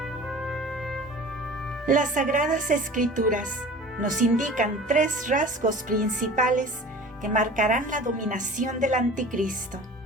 Las Sagradas Escrituras nos indican tres rasgos principales que marcarán la dominación del anticristo.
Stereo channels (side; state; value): both; normal; correlation 0.40